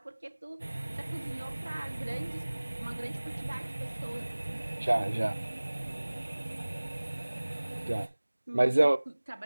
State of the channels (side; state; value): both; inverted; correlation -1.00